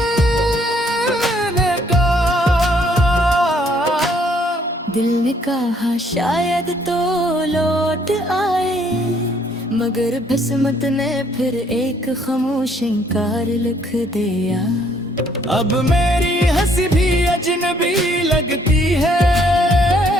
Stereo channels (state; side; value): normal; both; correlation 0.65